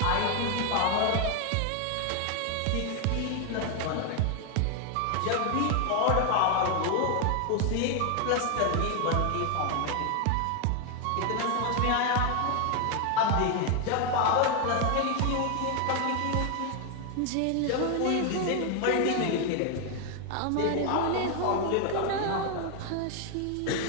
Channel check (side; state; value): both; different; correlation 0.01